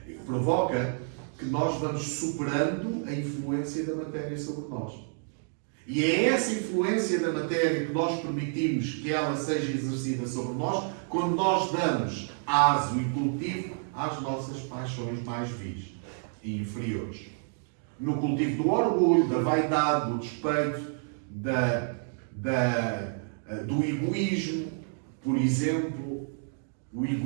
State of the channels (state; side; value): silent; left; 58 dB below the other